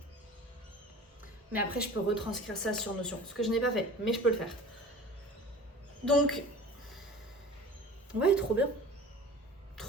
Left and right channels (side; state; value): both; normal; correlation 0.41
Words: Mais après, je peux retranscrire ça sur Notion, ce que je n'ai pas fait, mais je peux le faire. Donc, ouais, trop bien.